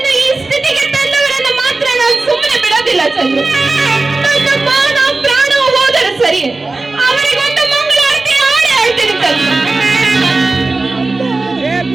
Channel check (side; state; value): left; quieter; 3.4 dB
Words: ಈ ಸ್ಥಿತಿಗೆ ತಂದವರನ್ನು ಮಾತ್ರ ನಾನು ಸುಮ್ಮನೆ ಬಿಡೋದಿಲ್ಲ ಚಂದ್ರು. ನನ್ನ ಮಾನ ಪ್ರಾಣ ಹೋದರೆ ಸರಿ, ಅವರಿಗೊಂದು ಮಂಗಳಾರತಿ ಹಾಡಿ ಆಡ್ತೀನಿ ಚಂದ್ರು.